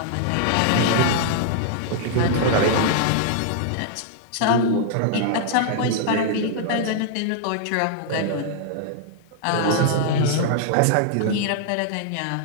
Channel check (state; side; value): different; both; correlation -0.01